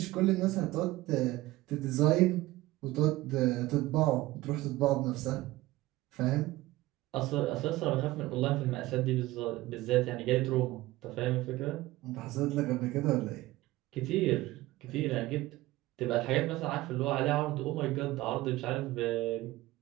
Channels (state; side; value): quieter; left; 18.1 dB